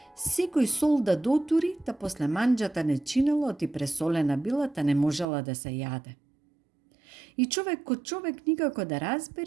Секој сол да дотури, та после манџата не чинело, ти пресолена била, та не можела да се јаде. И човек ко човек никако да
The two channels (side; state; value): left; drops out; at 5.2 s